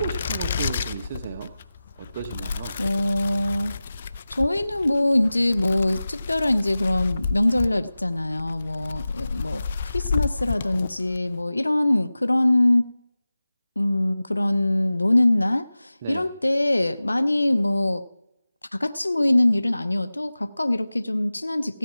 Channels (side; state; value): both; inverted; correlation -0.97